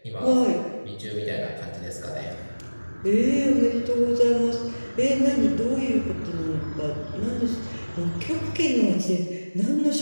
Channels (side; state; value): both; inverted; correlation -1.00